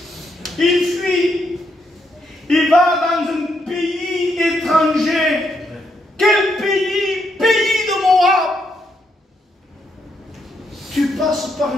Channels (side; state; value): both; normal; correlation 0.78